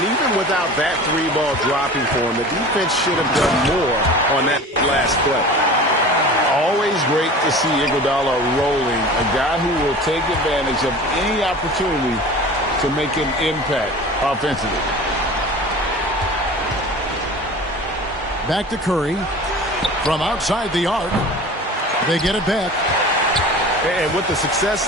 even without that three ball dropping for him, the defense should have done more on that last play. Always great to see Iguodala rolling, a guy who will take advantage of any opportunity to make an impact offensively. Back to Curry. From outside the arc. They get it back. And with the success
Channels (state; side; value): normal; both; correlation 0.38